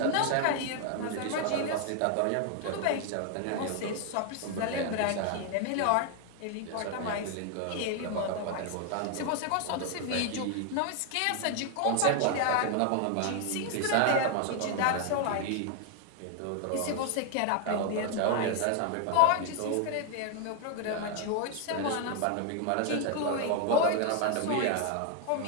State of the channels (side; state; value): both; different; correlation 0.00